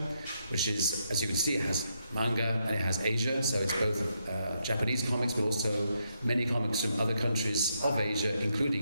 which is, as you can see, it has manga and it has Asia, so it's both Japanese comics, but also many comics from other countries of Asia,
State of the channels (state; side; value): inverted; both; correlation -0.80